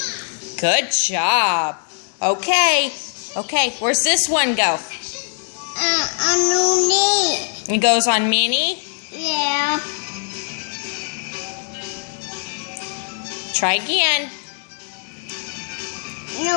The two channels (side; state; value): right; silent; digital silence